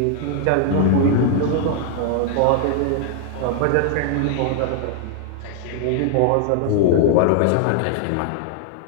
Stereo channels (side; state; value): both; different; correlation 0.00